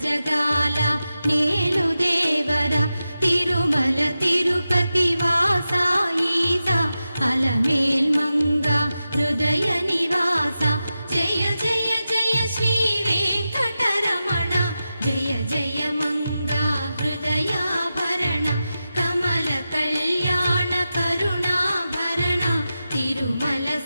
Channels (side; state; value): both; inverted; correlation -0.92